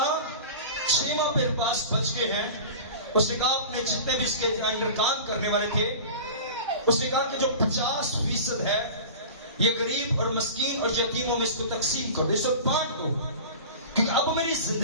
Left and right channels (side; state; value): both; inverted; correlation -0.36